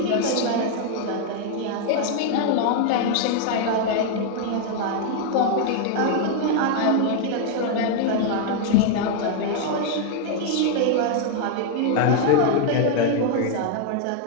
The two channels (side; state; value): both; different; correlation 0.00